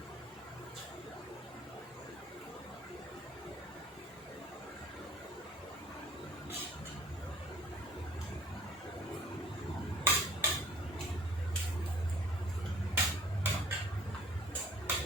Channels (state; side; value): normal; both; correlation 0.52